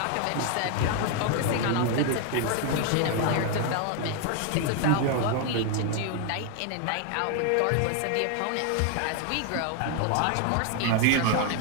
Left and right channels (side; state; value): both; different; correlation 0.00